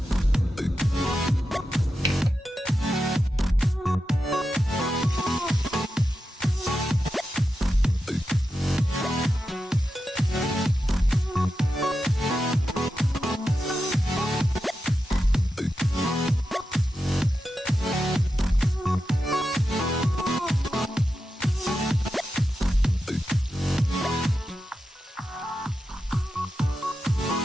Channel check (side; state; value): both; normal; correlation 0.89